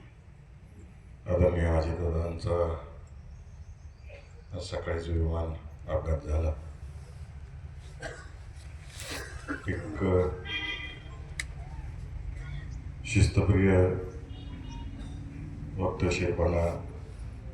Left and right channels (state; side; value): identical; both; correlation 1.00